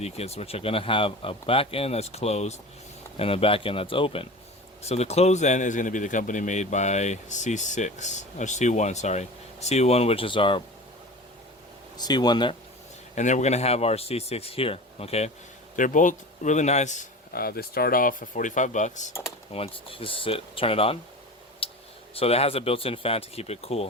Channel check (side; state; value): both; normal; correlation 0.34